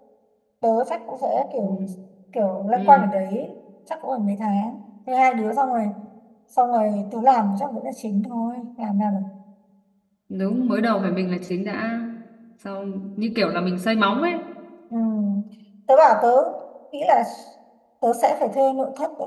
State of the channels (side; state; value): both; identical; correlation 1.00